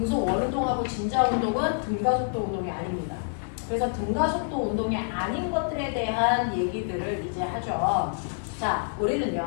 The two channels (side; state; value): right; silent; 58 dB below the other